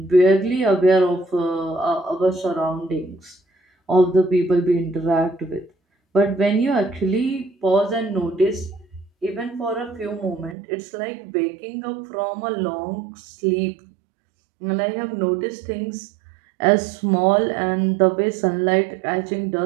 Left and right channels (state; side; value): drops out; left; at 10.6 s